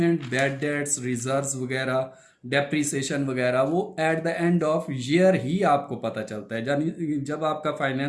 बैड डेट्स, रिजर्व्स वगैरह, डेप्रीसिएशन वगैरह, वो at the end of year ही आपको पता चलता है। यानी जब आपका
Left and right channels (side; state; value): both; identical; correlation 1.00